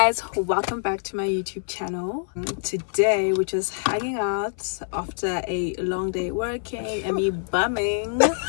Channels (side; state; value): right; silent; 62 dB below the other